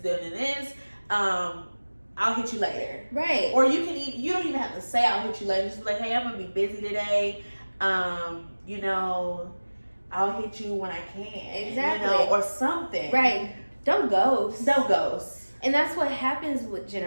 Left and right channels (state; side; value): inverted; both; correlation -1.00